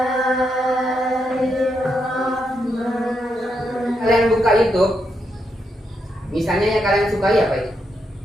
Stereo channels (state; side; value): normal; both; correlation 0.81